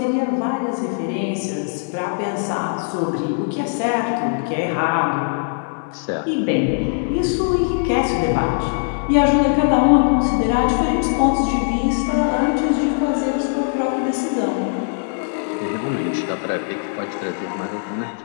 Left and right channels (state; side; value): silent; right; digital silence